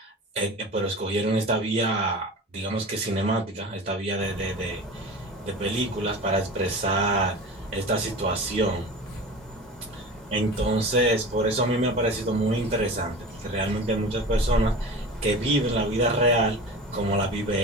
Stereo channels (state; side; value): normal; both; correlation 0.34